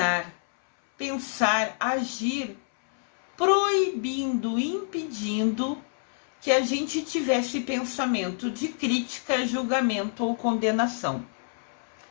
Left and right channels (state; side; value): silent; right; 60 dB below the other